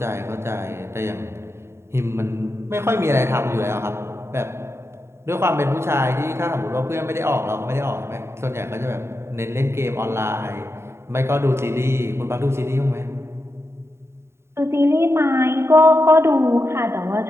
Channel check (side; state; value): left; late; 0.13 ms